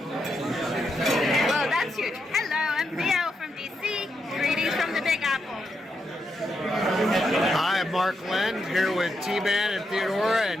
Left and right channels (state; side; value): normal; both; correlation 0.82